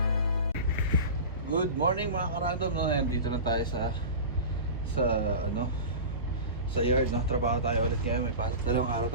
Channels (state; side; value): inverted; both; correlation -0.30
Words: Good morning mga karandom, no? Nandito na tayo sa ano, sa yard, no? Trabaho tayo ulit ngayon. May pasok, dalawang araw